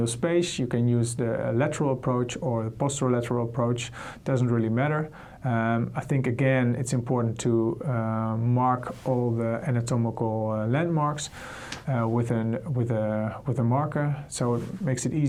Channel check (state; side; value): identical; both; correlation 1.00